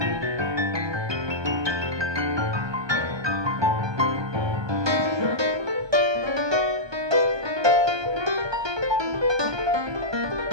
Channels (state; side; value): late; left; 1.2 ms